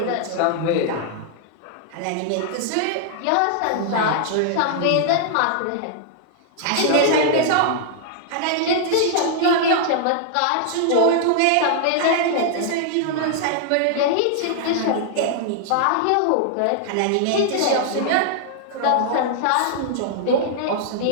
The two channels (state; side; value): different; both; correlation -0.01